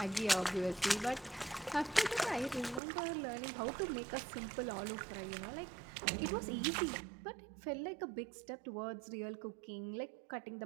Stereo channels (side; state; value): left; drops out; at 2.8 s